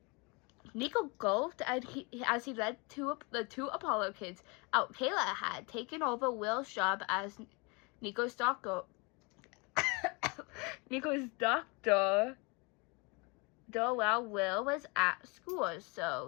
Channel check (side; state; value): right; quieter; 29.7 dB